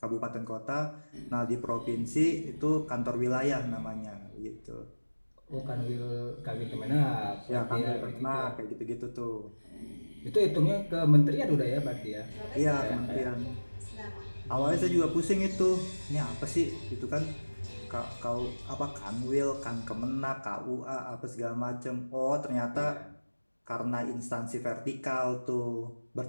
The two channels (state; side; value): inverted; both; correlation -1.00